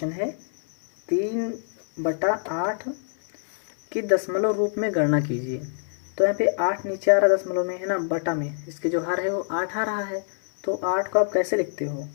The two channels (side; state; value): right; silent; 62 dB below the other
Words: है 3/8 की दशमलव रूप में गणना कीजिए। तो यहाँ पे 8 नीचे आ रहा दशमलव में है ना, बटा में इसके जो हर है वो 8 आ रहा है। तो 8 को आप कैसे लिखते हो?